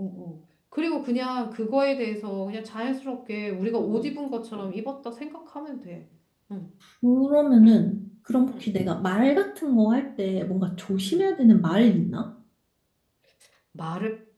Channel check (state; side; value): identical; both; correlation 1.00